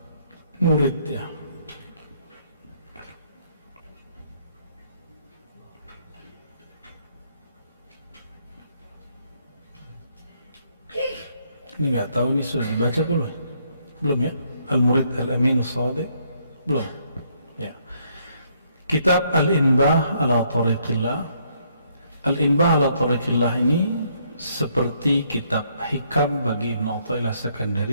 murid ya. Ini nggak tahu ini sudah dibaca belum? Belum ya? Al-Murid Al-Amin As-Sadiq belum ya. Kitab Al-Inbah ala Tariqillah. Al-Inbah ala Tariqillah ini seperti kitab hikam bagi Ibn Athaillah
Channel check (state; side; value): inverted; both; correlation -0.70